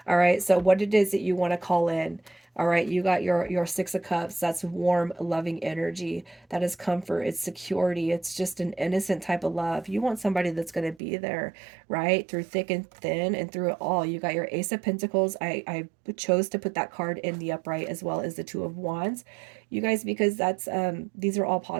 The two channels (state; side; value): drops out; left; at 11.0 s